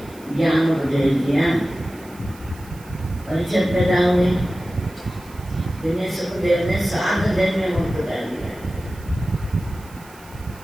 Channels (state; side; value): noise; right; hiss, 23 dB below the sound